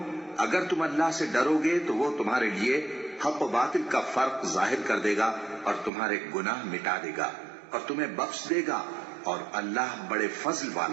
अगर तुम अल्लाह से डरोगे तो वो तुम्हारे लिए हक व बातिल का फर्क जाहिर कर देगा और तुम्हारे गुनाह मिटा देगा और तुम्हें बख्श देगा, और अल्लाह बड़े फजल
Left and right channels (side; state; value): left; drops out; at 5.9 s